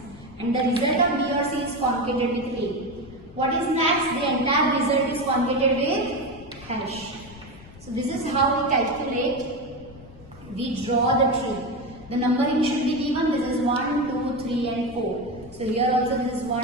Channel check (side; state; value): left; noise; rumble, 20 dB below the sound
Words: And the result of B or C is concatenated with A. What is next? The entire result is concatenated with hash. So this is how we calculate, we draw the tree. The numbering should be given. This is 1, 2, 3 and 4. So here also this is